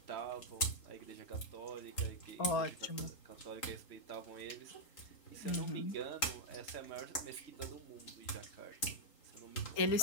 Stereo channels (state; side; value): late; right; 3.8 ms